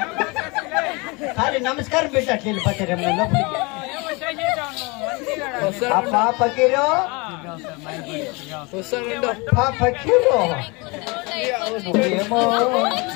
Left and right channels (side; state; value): right; quieter; 27.5 dB